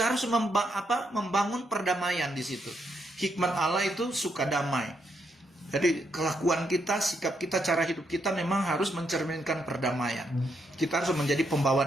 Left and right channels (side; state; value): both; normal; correlation 0.78